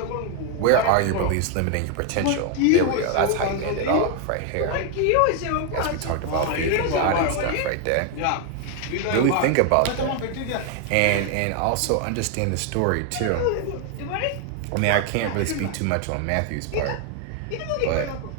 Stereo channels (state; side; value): different; both; correlation 0.01